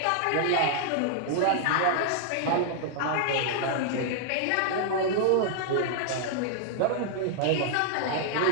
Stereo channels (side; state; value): both; different; correlation -0.01